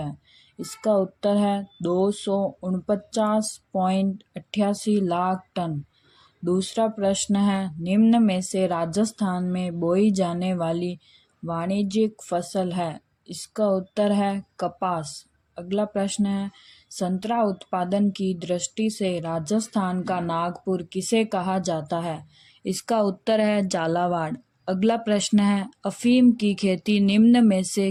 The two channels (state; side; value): identical; both; correlation 1.00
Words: इसका उत्तर है 249.88 लाख टन। दूसरा प्रश्न है, निम्न में से राजस्थान में बोई जाने वाली वाणिज्यिक फसल है। इसका उत्तर है कपास। अगला प्रश्न है, संतरा उत्पादन की दृष्टि से राजस्थान का नागपुर किसे कहा जाता है? इसका उत्तर है झालावाड़। अगला प्रश्न है, अफीम की खेती निम्न में